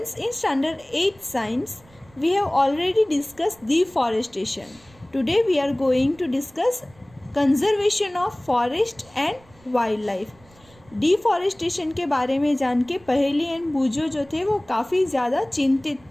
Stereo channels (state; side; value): noise; right; rumble, 28 dB below the sound